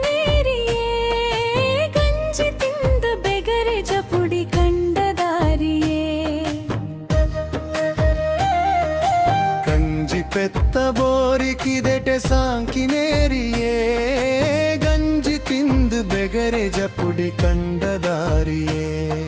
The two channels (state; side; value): identical; both; correlation 1.00